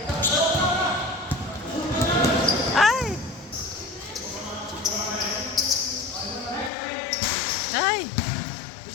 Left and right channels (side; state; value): right; drops out; at 6.7 s